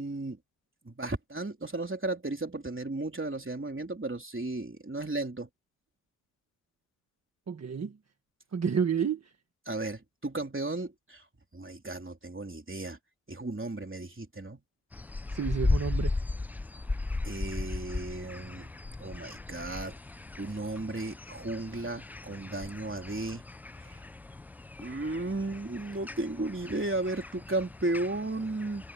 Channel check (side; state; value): both; normal; correlation 0.50